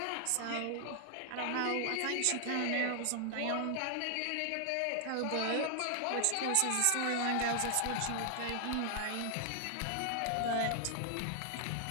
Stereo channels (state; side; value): different; both; correlation 0.00